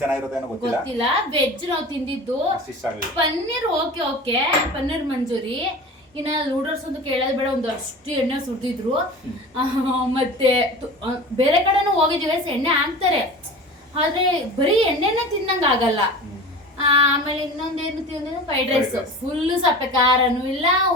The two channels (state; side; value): normal; both; correlation 0.36